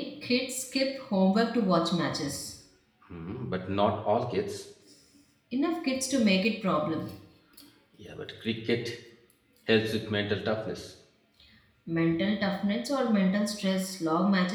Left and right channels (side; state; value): both; identical; correlation 1.00